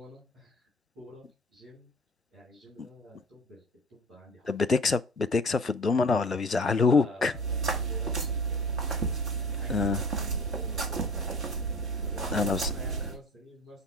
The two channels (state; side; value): normal; both; correlation 0.42